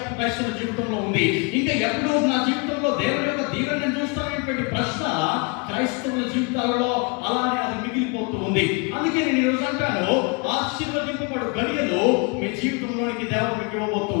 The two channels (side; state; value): right; quieter; 32.2 dB